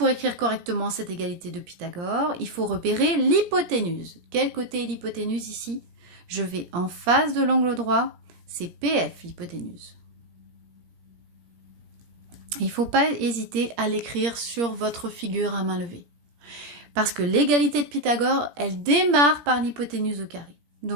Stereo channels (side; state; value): left; late; 17 ms